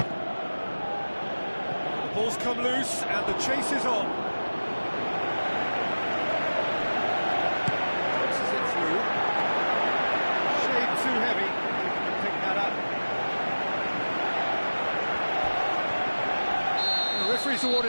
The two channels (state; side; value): inverted; both; correlation -1.00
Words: The ball's come loose and the chase is on. Passes it through. Shade too heavy. He can pick that up. The referee's